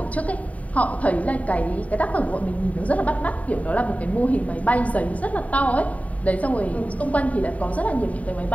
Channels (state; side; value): late; right; 0.069 ms